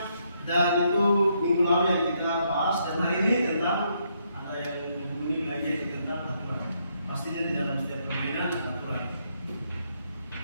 Dan itu minggu lalu yang kita bahas, dan hari ini tentang ada yang menghubungi lagi tentang aturan. Pastinya di dalam setiap permainan ada aturan.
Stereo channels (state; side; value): inverted; both; correlation -0.75